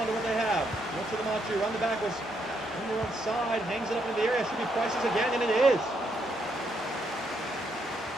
to what they have? Look to the Machu, run the backwards. On the one side, hangs it up into the area. Should be Price's again, and it is.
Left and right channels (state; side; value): normal; both; correlation 0.76